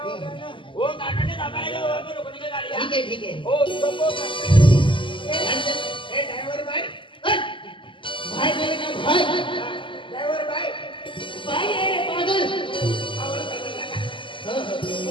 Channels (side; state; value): right; late; 0.25 ms